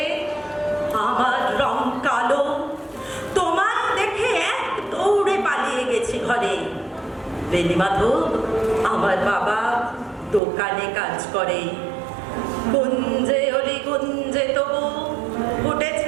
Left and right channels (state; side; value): drops out; left; at 10.4 s